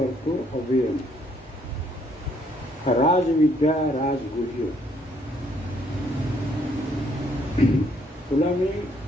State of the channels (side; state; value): both; normal; correlation 0.68